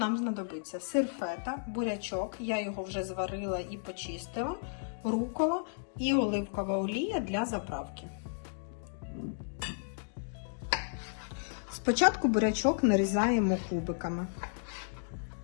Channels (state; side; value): silent; right; digital silence